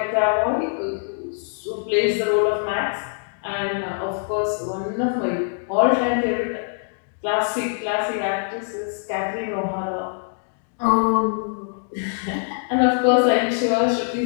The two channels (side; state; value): right; silent; digital silence